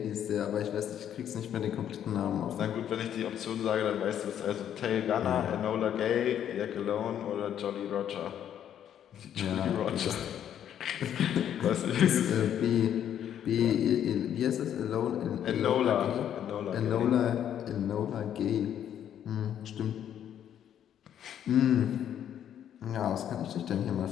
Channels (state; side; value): quieter; right; 9.9 dB